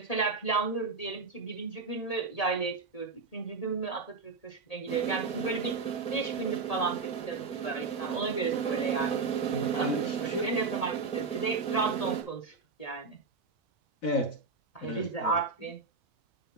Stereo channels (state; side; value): quieter; left; 4.3 dB